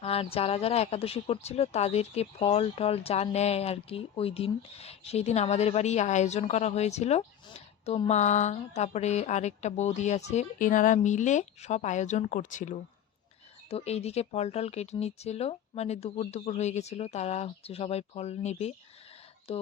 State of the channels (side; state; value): right; quieter; 9.6 dB